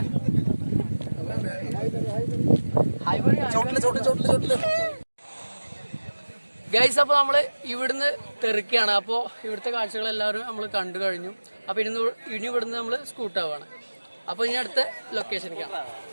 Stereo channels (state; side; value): inverted; both; correlation -1.00